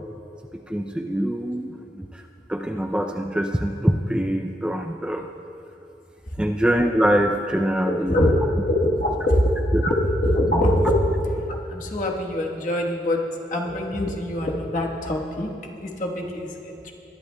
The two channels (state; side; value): normal; both; correlation 0.77